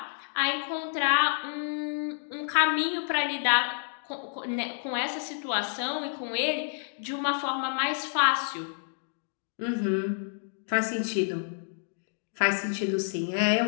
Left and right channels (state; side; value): silent; right; digital silence